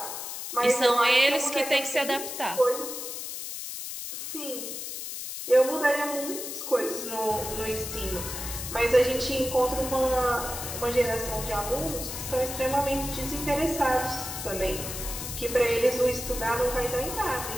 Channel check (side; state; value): left; noise; hiss, 7 dB below the sound